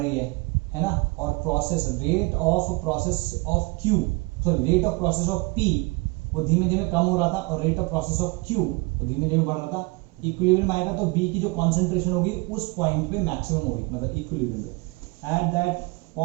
है ना, और process rate of process of Q, sorry rate of process of P वो धीमे धीमे कम हो रहा था, और rate of process of Q वो धीमे धीमे बढ़ रहा था। इक्विलिब्रियम आएगा तो B की जो कॉन्सेंट्रेशन होगी उस पॉइंट पे मैक्सिमम होगी, मतलब इक्विलिब्रियम पे। At that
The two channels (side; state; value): left; quieter; 26.6 dB